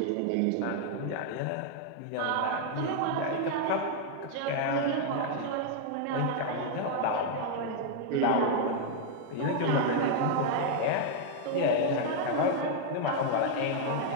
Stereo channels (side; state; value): both; different; correlation 0.00